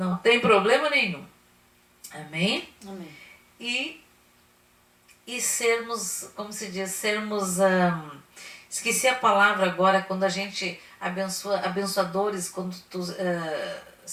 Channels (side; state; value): both; identical; correlation 1.00